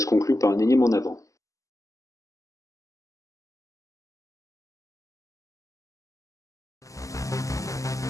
conclut par un énième en avant.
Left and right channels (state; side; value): late; right; 0.16 ms